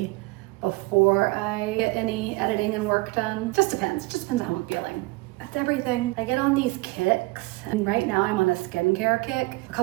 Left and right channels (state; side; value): quieter; left; 23.2 dB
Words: before I get any editing and work done. Just depends on how I'm feeling. That's everything. I get on these kicks, and right now I'm on a skincare kick. A